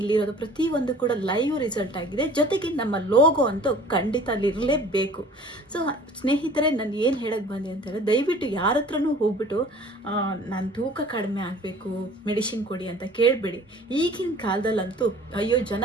ಪ್ರತಿಯೊಂದು ಕೂಡ ಲೈವ್ ರಿಸಲ್ಟ್ ಆಗಿದೆ. ಜೊತೆಗೆ ನಮ್ಮ ಲೋಗೋ ಅಂತೂ ಖಂಡಿತ ಅಲ್ಲಿರಲೇಬೇಕು. ಸೊ ಸ್ನೇಹಿತರೆ, ನಾನು ಏನು ಹೇಳಕ್ಕೆ ಬಂದೆ ಅಂತೇಳಿ, ದಯವಿಟ್ಟು ಯಾರ ಹತ್ರನೂ ಹೋಗ್ಬಿಟ್ಟು ನಾನು ತೂಕ ಕಡಿಮೆ ಆಗಬೇಕು, ಮೆಡಿಸಿನ್ ಕೊಡಿ ಅಂತ ಕೇಳಬೇಡಿ. ಈಗಿನ ಕಾಲದಲ್ಲಂತೂ ಅಯ್ಯೋ,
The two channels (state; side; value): normal; both; correlation 0.48